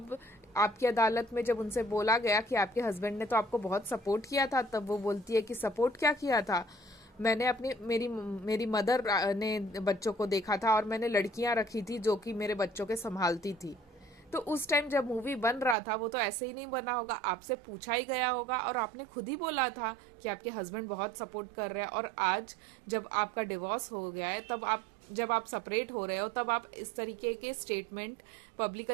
आपकी अदालत में जब उनसे बोला गया कि आपके हस्बैंड ने तो आपको बहुत सपोर्ट किया था, तब वो बोलती है कि सपोर्ट क्या किया था, मैंने मेरी मदर ने बच्चों को देखा था और मैंने लड़कियां रखी थी जो कि मेरे बच्चों के संभालती थी। तो उस टाइम जब मूवी बन रहा था वो तो ऐसे ही नहीं बना होगा, आपसे पूछा ही गया होगा और आपने खुद ही बोला था कि आपके हस्बैंड बहुत सपोर्ट कर रहे हैं। और आज जब आपका डिवोर्स हो गया है, जब आप सेपरेट हो रहे हो, तब आप इस तरीके के स्टेटमेंट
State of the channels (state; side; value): drops out; left; at 15.8 s